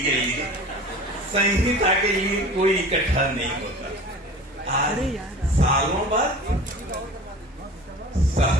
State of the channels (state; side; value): normal; both; correlation 0.40